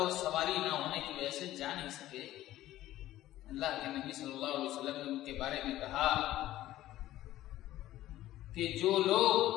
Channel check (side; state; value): right; quieter; 14.6 dB